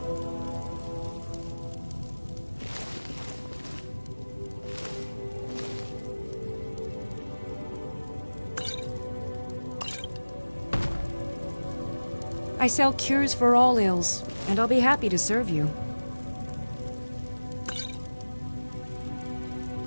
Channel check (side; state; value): both; inverted; correlation -1.00